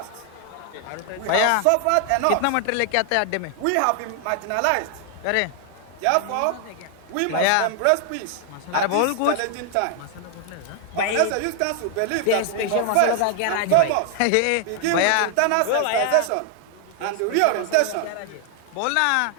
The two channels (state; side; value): different; both; correlation 0.00